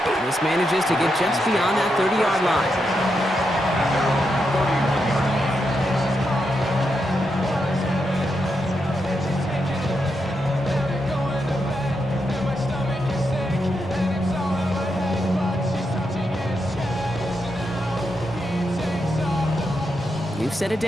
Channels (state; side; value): normal; both; correlation 0.84